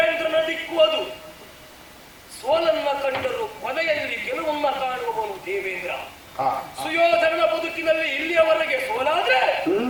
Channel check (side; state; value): both; identical; correlation 1.00